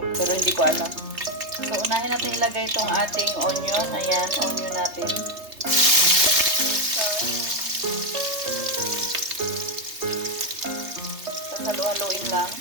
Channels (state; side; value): late; left; 3.3 ms